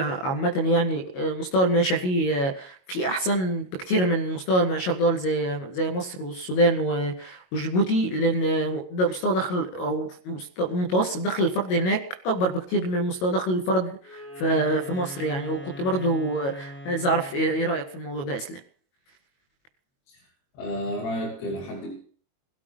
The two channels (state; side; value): late; right; 22 ms